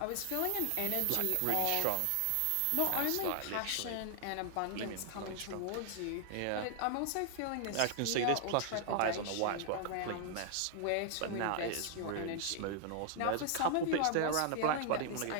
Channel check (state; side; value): different; both; correlation 0.00